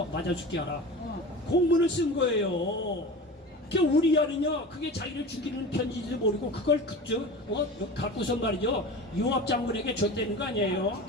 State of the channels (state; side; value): normal; both; correlation 0.33